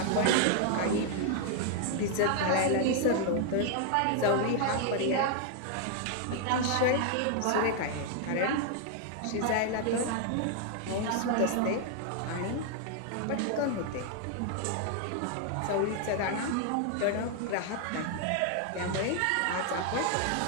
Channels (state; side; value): different; both; correlation 0.00